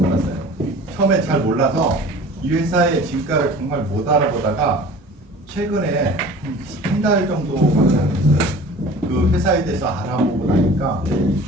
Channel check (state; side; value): normal; both; correlation 0.43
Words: 처음에 잘 몰라서 이 회사의 진가를 정말 못 알아보다가 최근에 한 달 정도밖에 안 됐어요. 그 회사에 대해서 알아보고 나니까